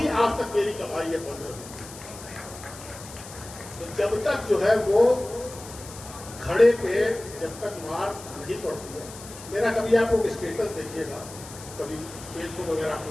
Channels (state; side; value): noise; left; hiss, 15 dB below the sound